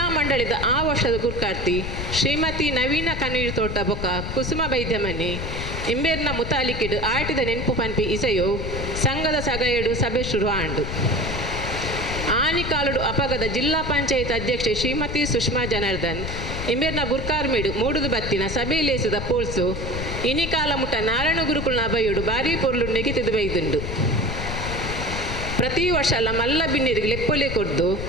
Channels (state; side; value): noise; left; rumble, 5 dB below the sound